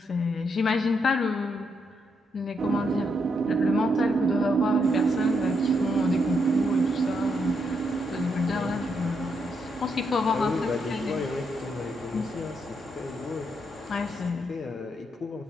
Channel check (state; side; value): normal; both; correlation 0.78